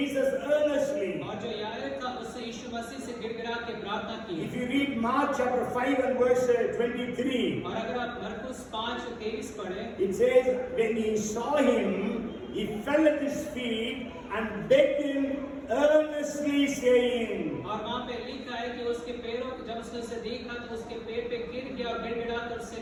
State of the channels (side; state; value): both; identical; correlation 1.00